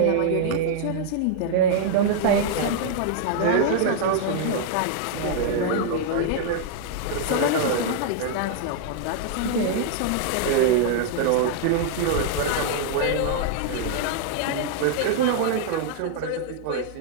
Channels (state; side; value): different; both; correlation -0.01